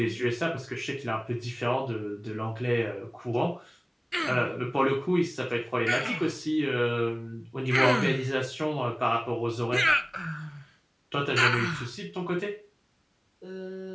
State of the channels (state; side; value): identical; both; correlation 1.00